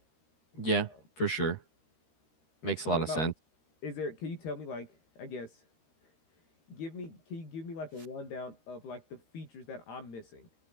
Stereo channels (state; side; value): late; right; 13 ms